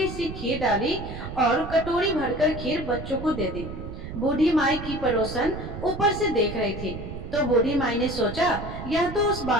सी खीर डाली और कटोरी भरकर खीर बच्चों को दे दी। बूढ़ी माई की पड़ोसन ऊपर से देख रही थी, तो बूढ़ी माई ने सोचा, यह तो उस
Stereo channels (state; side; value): noise; right; rumble, 9 dB below the sound